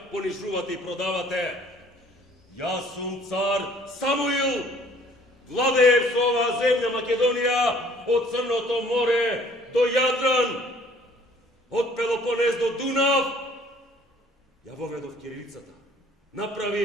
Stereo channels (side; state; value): both; normal; correlation 0.56